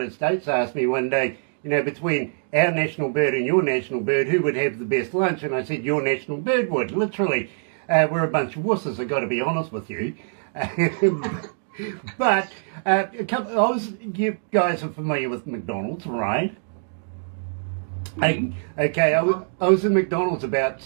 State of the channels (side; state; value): left; silent; digital silence